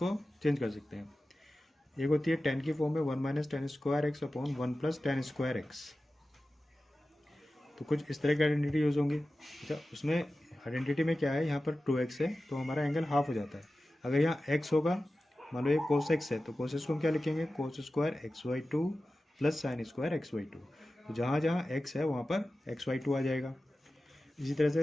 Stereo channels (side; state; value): both; normal; correlation 0.94